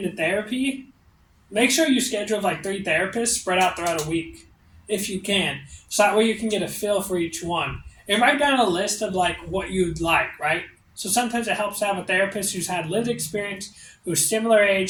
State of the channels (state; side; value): identical; both; correlation 1.00